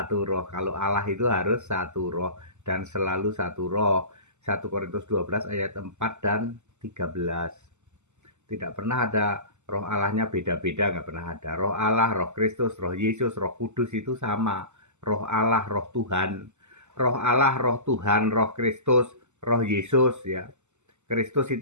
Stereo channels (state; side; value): late; left; 0.83 ms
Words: roh. Kalau Allah itu harus satu roh dan selalu satu roh. 1 Korintus 12 ayat 4 dan 13. Tidak pernah ada roh Allahnya beda-beda, nggak pernah ada. Roh Allah, roh Kristus, roh Yesus, roh Kudus itu sama. Roh Allah, roh Tuhan. Roh Allah, roh Tuhan, roh Kristus, roh Yesus ya. Kristus